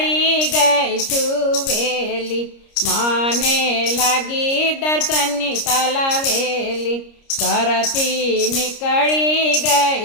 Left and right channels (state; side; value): late; right; 29 ms